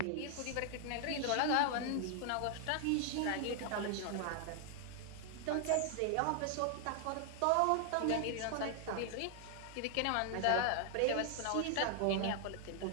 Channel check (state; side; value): different; both; correlation 0.00